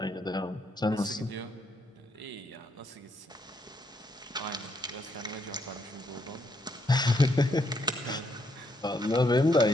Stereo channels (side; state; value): both; normal; correlation 0.75